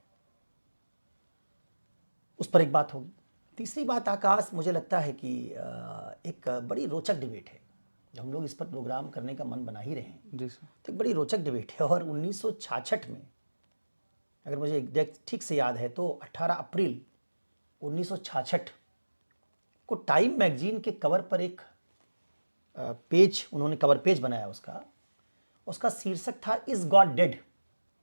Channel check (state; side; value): inverted; both; correlation -1.00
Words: उस पर एक बात होगी। तीसरी बात आकाश, मुझे लगता है कि एक बड़ी रोचक डिबेट है, जब हम लोग इस पर प्रोग्राम करने का मन बना ही रहे हैं जी सर। तो एक बड़ी रोचक डिबेट है। और 1966 में, अगर मुझे एग्जैक्ट ठीक से याद है, तो 18 अप्रैल 1966 को टाइम मैगजीन के कवर पर एक पेज, उन्होंने कवर पेज बनाया उसका शीर्षक था इज गॉड डेड,